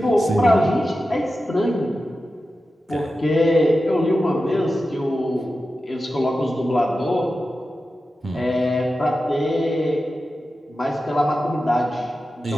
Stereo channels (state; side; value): normal; both; correlation 0.92